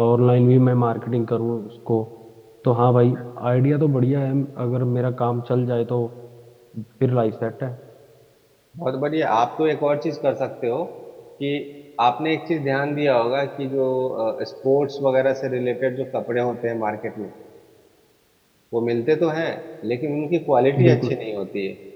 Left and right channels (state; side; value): identical; both; correlation 1.00